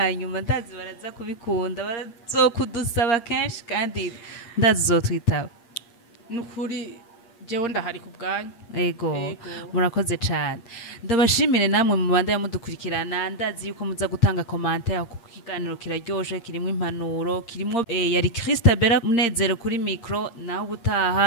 ndazi baraza kubikunda barazokudusaba kenshi kandi ndazi uzotwitaba nukuri jewe ndahari ku bwanyu Ego murakoze cyane ndabashimire namwe mu banda yamudukurikirana ndazi yuko muza gutanga commentaire ku kiganiro kiraryoshe kirimo impanuro kirimo yari Christabella Munezero kuri micro naho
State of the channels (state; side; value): late; right; 8.6 ms